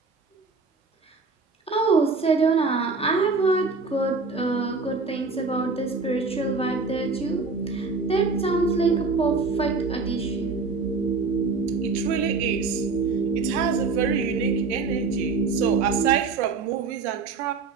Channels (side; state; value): left; quieter; 4.3 dB